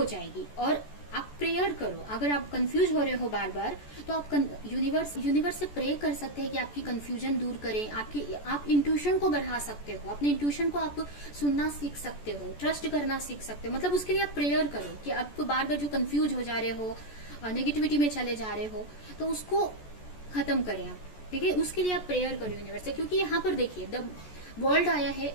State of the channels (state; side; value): late; right; 14 ms